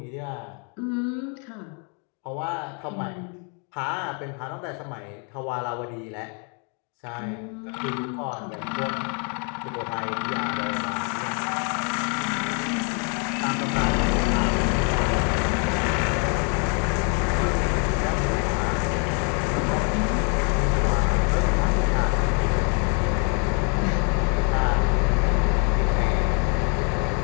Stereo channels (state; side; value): quieter; right; 38.3 dB